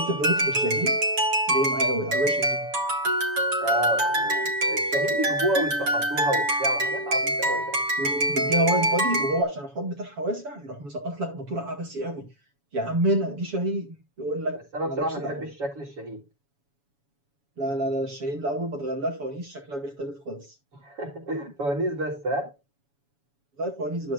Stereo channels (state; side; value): late; left; 7.1 ms